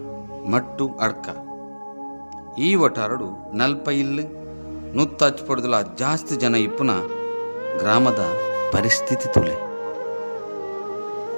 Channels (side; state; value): both; inverted; correlation -1.00